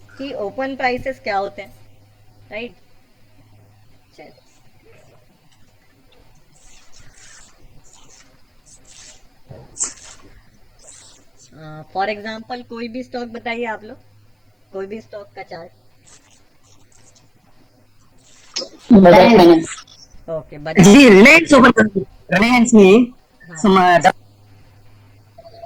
कि ओपन प्राइसेस क्या होते हैं, राइट। चलिए, फॉर एग्जांपल कोई भी स्टॉक बताइए आप लोग, कोई भी स्टॉक का chart. Bajaj finance. Okay, Bajaj ji, finance. Reliance open Reliance में हाँ। some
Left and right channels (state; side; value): identical; both; correlation 1.00